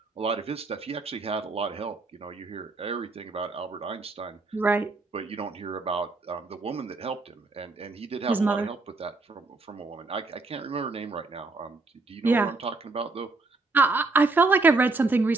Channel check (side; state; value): left; quieter; 3.5 dB